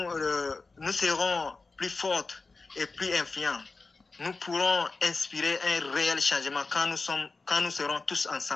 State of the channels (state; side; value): quieter; right; 3.9 dB